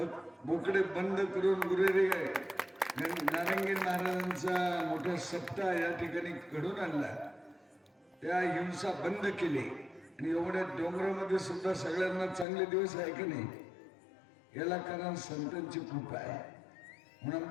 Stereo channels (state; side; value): drops out; right; at 12.5 s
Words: बोकडे बंद करून गुरुदेव नारायण महाराजांचा मोठा सप्ताह या ठिकाणी घडून आणला. त्या हिंसा बंद केली आणि एवढ्या डोंगरामध्ये सुद्धा सगळ्यांना चांगले दिवस आहे की नाही याला कारण संतांची कृपा आहे. म्हणून